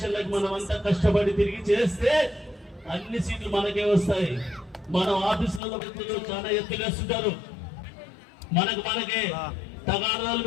మనం అంతా కష్టపడి తిరిగి చేస్తే అన్ని సీట్లు మనకే వస్తాయి. మనం ఆఫీసులలో చాలా ఎత్తులు వేస్తుంటారు, మనకే తగాదాలు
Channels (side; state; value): right; drops out; at 5.6 s